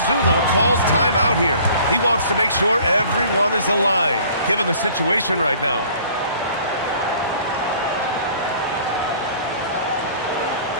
calls timeout here. He wants to make sure everyone is aligned, given the situation right now.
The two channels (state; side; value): inverted; both; correlation -0.51